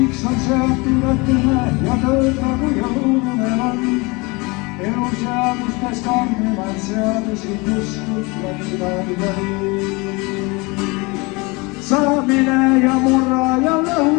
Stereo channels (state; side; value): quieter; right; 26.4 dB